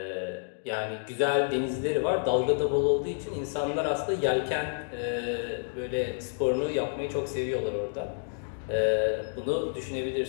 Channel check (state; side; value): silent; right; digital silence